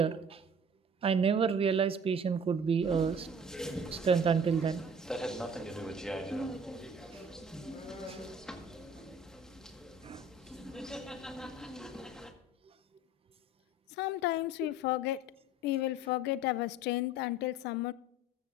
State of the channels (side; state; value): both; normal; correlation 0.46